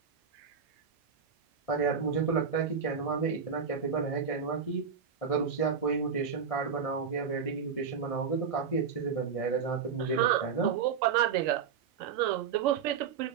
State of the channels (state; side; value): quieter; left; 6.5 dB